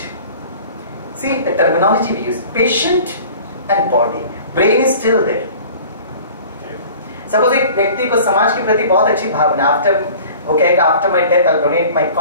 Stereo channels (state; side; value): inverted; both; correlation -0.44